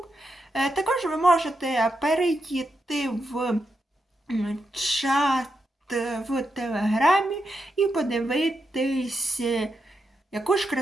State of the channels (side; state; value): both; normal; correlation 0.85